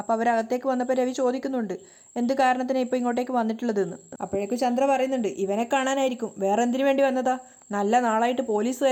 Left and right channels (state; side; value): identical; both; correlation 1.00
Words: അവരകത്തേക്ക് വന്നപ്പോൾ രവി ചോദിക്കുന്നുണ്ട്, എന്ത് കാരണത്തിനാണ് ഇപ്പോൾ ഇങ്ങോട്ടേക്ക് വന്നിട്ടുള്ളതെന്ന്. അപ്പോഴേക്കും ചന്ദ്ര പറയുന്നുണ്ട്, ഇവനെ കാണാനായിരിക്കും, വേറെ എന്തിനു വേണ്ടി വന്നതാ? നല്ല നാളായിട്ട്